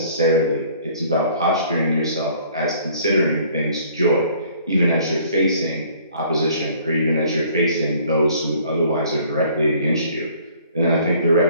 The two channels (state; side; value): inverted; both; correlation -0.56